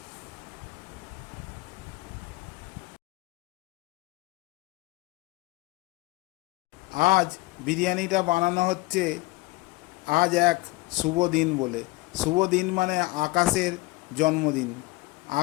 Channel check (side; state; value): right; quieter; 21.4 dB